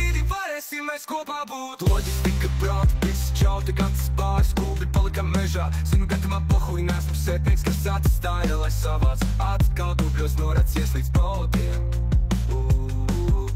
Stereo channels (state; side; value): identical; both; correlation 1.00